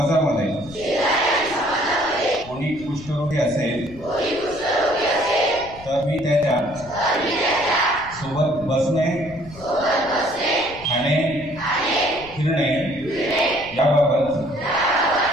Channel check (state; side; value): noise; left; rumble, 19 dB below the sound